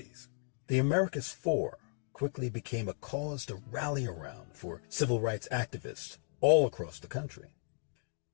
The Americus Four quickly became a cause to rally around for civil rights activists all across the country.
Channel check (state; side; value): silent; right; 54 dB below the other